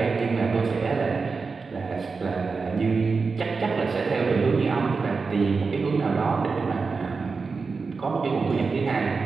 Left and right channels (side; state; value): left; quieter; 4.6 dB